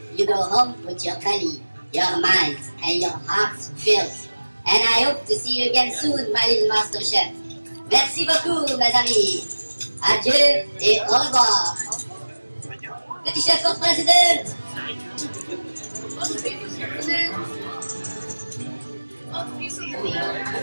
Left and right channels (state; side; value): inverted; both; correlation -1.00